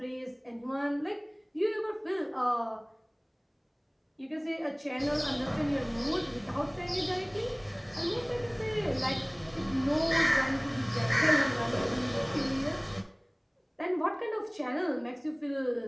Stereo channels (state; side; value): identical; both; correlation 1.00